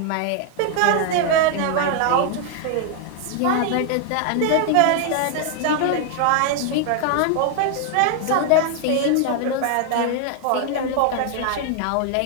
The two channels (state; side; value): different; both; correlation 0.00